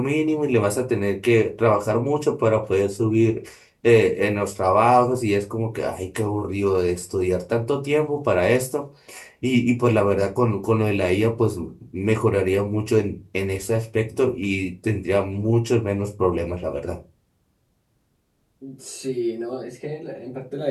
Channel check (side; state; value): both; identical; correlation 1.00